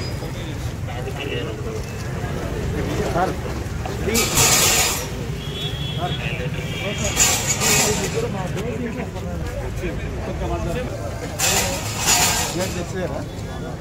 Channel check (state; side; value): identical; both; correlation 1.00